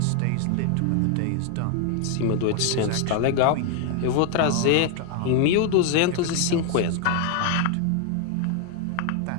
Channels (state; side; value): different; both; correlation 0.00